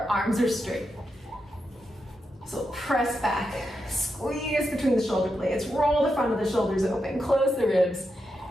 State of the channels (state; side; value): normal; both; correlation 0.86